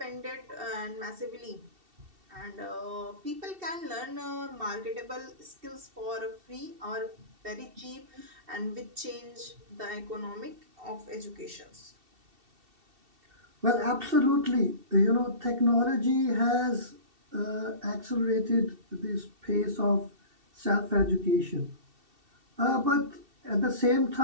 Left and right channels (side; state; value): left; late; 2.7 ms